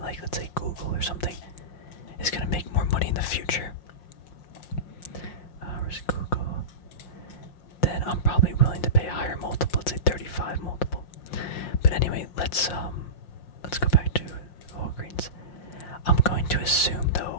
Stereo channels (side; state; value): right; late; 5.6 ms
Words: like, let's say, Google or something is going to make more money in the future, where's Google, then I'm probably willing to pay a higher multiple, let's say 35 multiple. But anyway, let's go back to Walgreens. I'm going to assume,